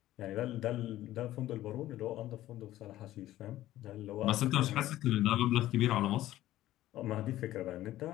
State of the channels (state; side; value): quieter; right; 14.6 dB